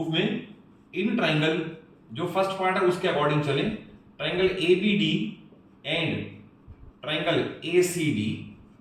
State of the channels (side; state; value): both; identical; correlation 1.00